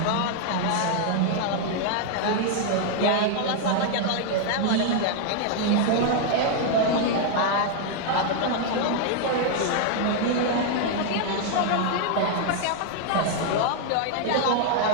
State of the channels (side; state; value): both; different; correlation 0.00